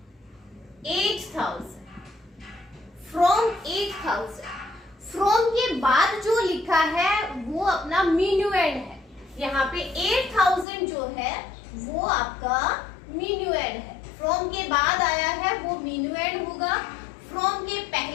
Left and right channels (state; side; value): drops out; right; at 10.7 s